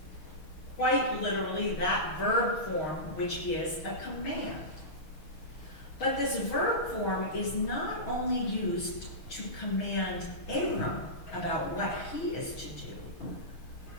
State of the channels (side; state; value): right; late; 6.4 ms